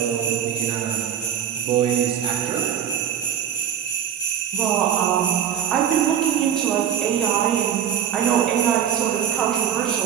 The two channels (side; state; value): left; quieter; 9.1 dB